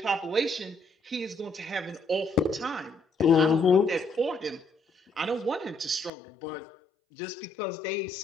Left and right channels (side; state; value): right; drops out; at 6.1 s